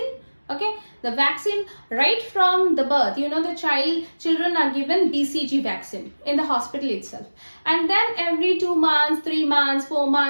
Okay, the vaccine right from the birth, you know, the children are given BCG vaccine in the hospital itself, and then every 2 months, 3 months, 4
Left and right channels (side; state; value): both; inverted; correlation -1.00